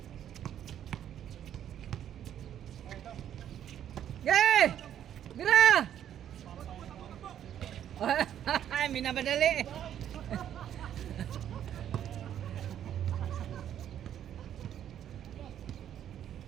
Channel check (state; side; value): quieter; left; 10.3 dB